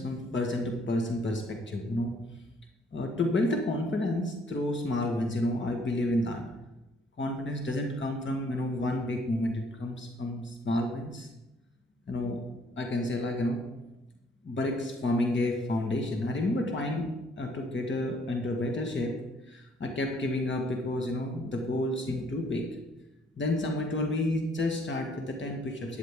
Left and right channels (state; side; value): normal; both; correlation 0.64